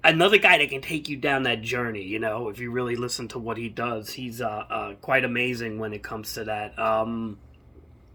guy that can take you down that journey. If you really listen to what he does, he's quite amazing when it comes to that.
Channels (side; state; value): both; identical; correlation 1.00